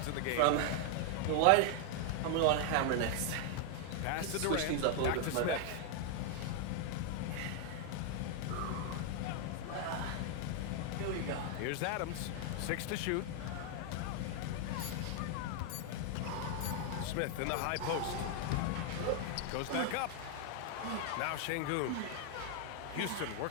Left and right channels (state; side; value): different; both; correlation 0.00